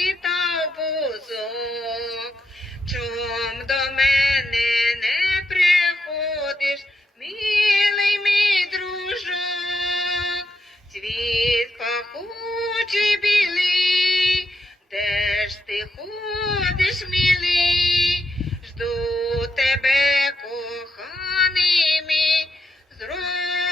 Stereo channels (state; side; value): normal; both; correlation 0.82